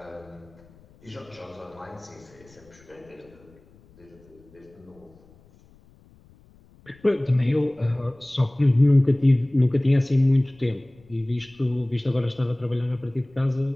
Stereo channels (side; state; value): left; noise; rumble, 28 dB below the sound